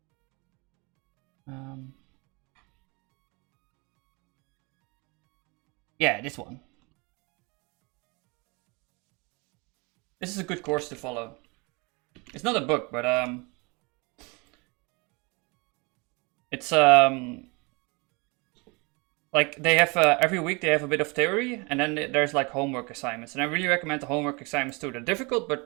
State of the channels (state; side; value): quieter; left; 28.5 dB